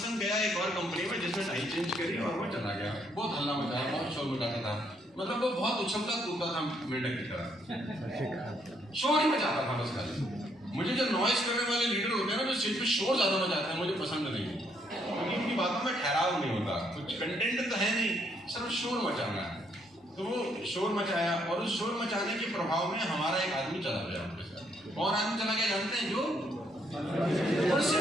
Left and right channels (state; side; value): normal; both; correlation 0.71